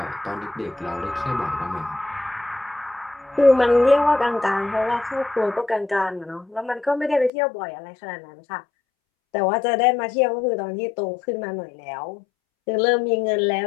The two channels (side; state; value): right; drops out; at 7.3 s